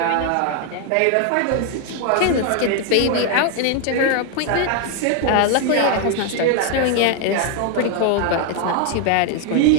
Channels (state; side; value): different; both; correlation 0.01